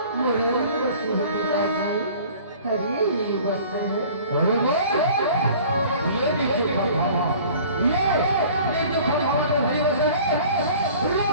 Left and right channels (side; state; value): both; inverted; correlation -0.48